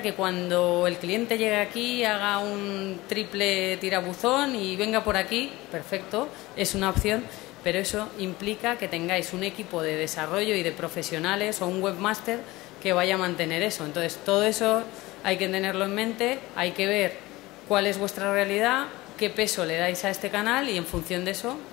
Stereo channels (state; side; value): quieter; right; 19.8 dB